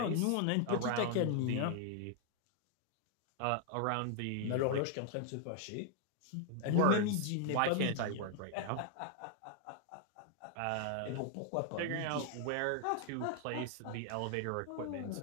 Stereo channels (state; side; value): different; both; correlation 0.00